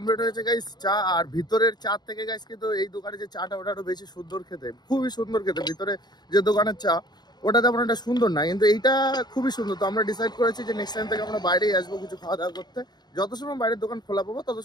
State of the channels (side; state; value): right; late; 0.20 ms